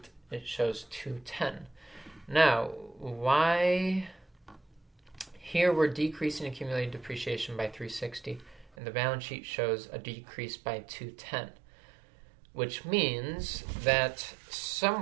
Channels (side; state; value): left; drops out; at 8.7 s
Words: it shows $210. Now, why here we're decreasing accumulated depreciation by $360 and the balance sheet shows a decrease by $210, which means that